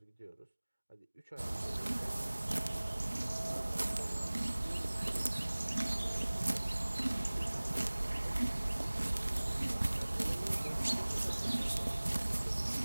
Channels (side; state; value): both; inverted; correlation -1.00